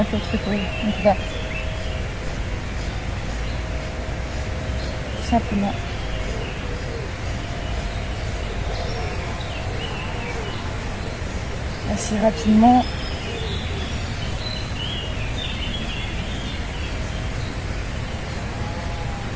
l'autre épaule. Donc on va tout simplement assez rapidement.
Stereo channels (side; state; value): both; identical; correlation 1.00